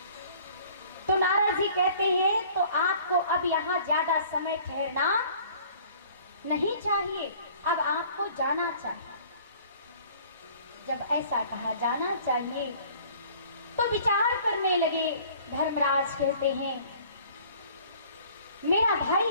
तो नारद जी कहते हैं तो आपको अब यहाँ ज्यादा समय ठहरना नहीं चाहिए, अब आपको जाना चाहिए। जब ऐसा कहा जाना चाहिए तो विचार करने लगे। धर्मराज कहते हैं मेरा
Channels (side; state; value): both; inverted; correlation -0.52